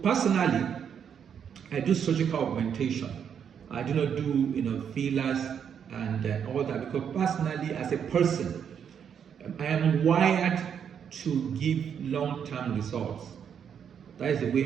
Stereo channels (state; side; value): quieter; left; 7.9 dB